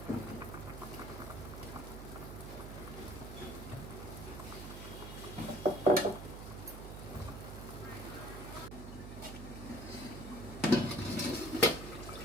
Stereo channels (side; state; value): right; noise; hum, 9 dB below the sound